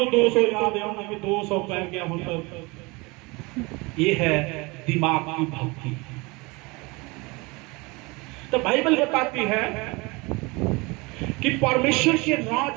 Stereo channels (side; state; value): left; quieter; 25.6 dB